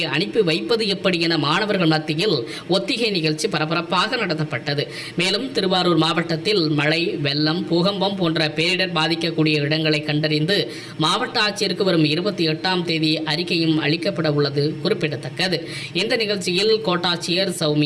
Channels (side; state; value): both; identical; correlation 1.00